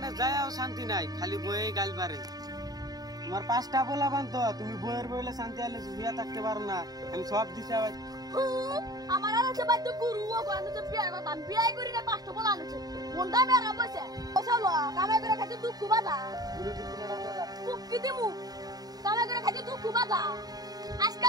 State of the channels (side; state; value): left; late; 0.18 ms